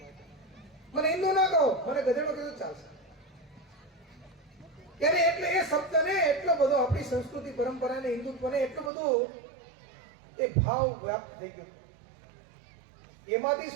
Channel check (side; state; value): left; drops out; at 8.9 s